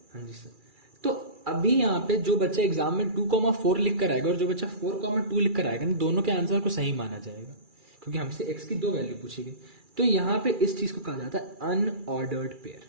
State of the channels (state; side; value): late; left; 2.3 ms